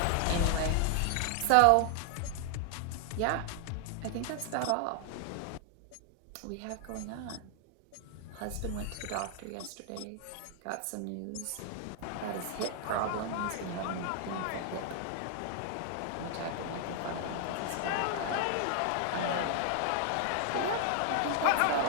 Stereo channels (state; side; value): different; both; correlation 0.00